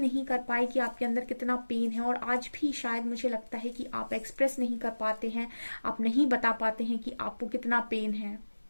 कर पाए कि आपके अंदर कितना पेन है, और आज भी शायद मुझे लगता है कि आप एक्सप्रेस नहीं कर पाते हैं, आप नहीं बता पाते हैं कि आपको कितना पेन है।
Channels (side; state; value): both; inverted; correlation -1.00